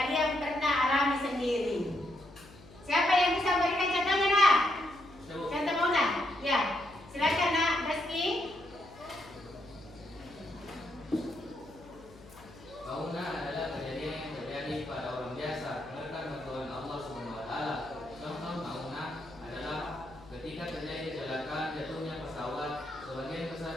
pernah alami sendiri. Siapa yang bisa memberikan contohnya, Nak? Contoh maunah? Ya, silakan Nak, Rizky. Maunah adalah kejadian yang terjadi pada orang biasa menekan bantuan Allah SWT. Contoh maunah adalah ketika terjadi kecelakaan jatuhnya pesawat, sebagian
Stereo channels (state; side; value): noise; left; hum, 21 dB below the sound